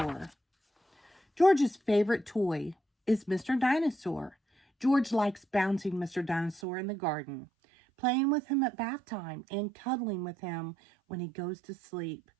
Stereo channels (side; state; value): left; drops out; at 6.6 s